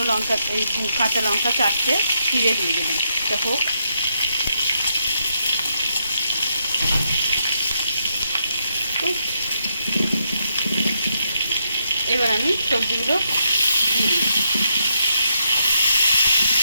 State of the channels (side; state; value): both; inverted; correlation -0.79